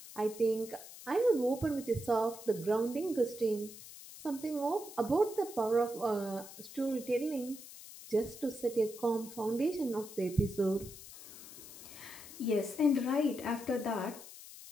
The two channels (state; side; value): noise; left; hiss, 15 dB below the sound